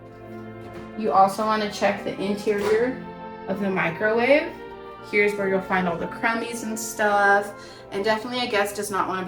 You also want to check the interior of the microwave. Here's where you'll find all the crummies and stuff. And definitely a guest does not want to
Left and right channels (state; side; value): identical; both; correlation 1.00